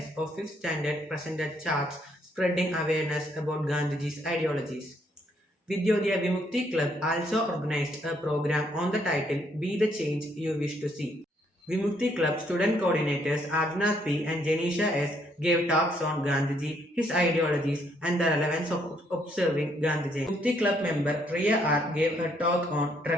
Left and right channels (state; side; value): normal; both; correlation 0.70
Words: of 5th Standard presented charts spreading awareness about Gandhiji's ideologies. Vidyodaya Vimukti Club also organized a program on the title Be the Change You Wish to See. Vimukti Club student coordinators Agnath P. and Janisha S. gave talks on Gandhiji, his ideologies, and the relevance of observing Gandhiji. Vimukti Club member Riya R. gave a talk on